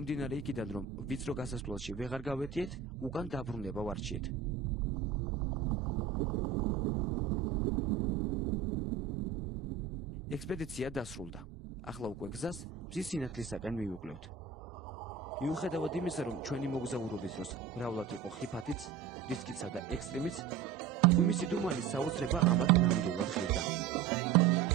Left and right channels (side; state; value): left; quieter; 7.3 dB